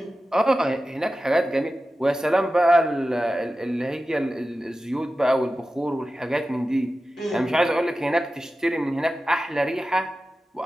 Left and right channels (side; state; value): both; normal; correlation 0.94